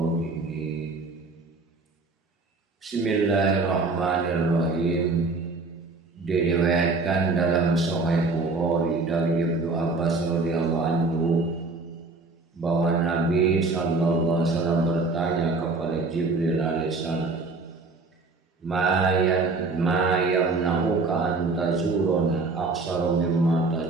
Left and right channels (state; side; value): quieter; left; 3.7 dB